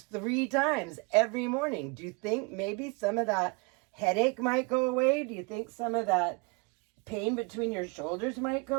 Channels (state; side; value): quieter; left; 30.4 dB